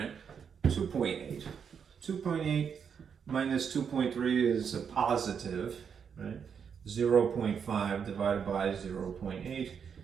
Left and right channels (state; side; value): quieter; left; 7.0 dB